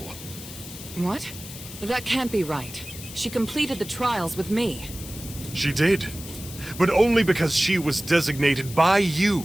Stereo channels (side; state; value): left; noise; hiss, 13 dB below the sound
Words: What? That can't be right. She completed the trials with me. She did. But only because she was designated by